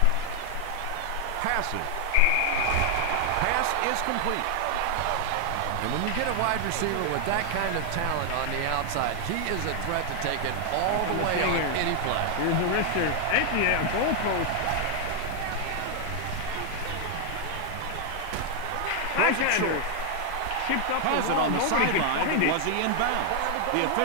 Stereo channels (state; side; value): different; both; correlation 0.00